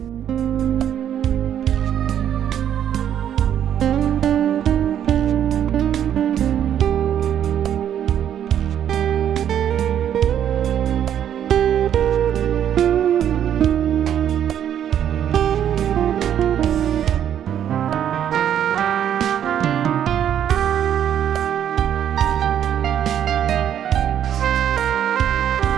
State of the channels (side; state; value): left; quieter; 9.9 dB